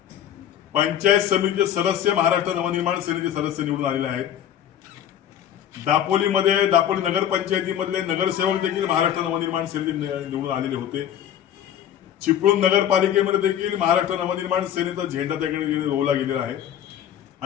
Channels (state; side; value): quieter; right; 10.4 dB